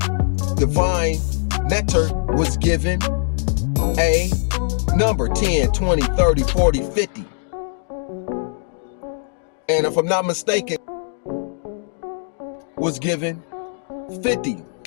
divine nectar was given a number, 10, 20, 30, 40, 50. And if I'm not mistaken, was given 50.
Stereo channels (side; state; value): right; silent; digital silence